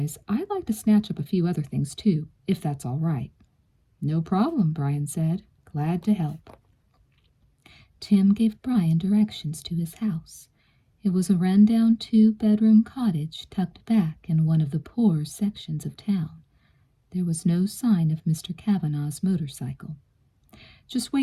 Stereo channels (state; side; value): identical; both; correlation 1.00